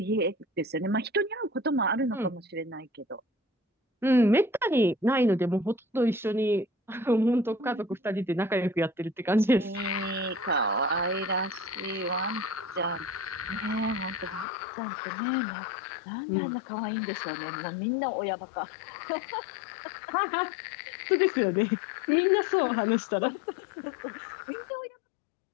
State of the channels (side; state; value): right; drops out; at 14.5 s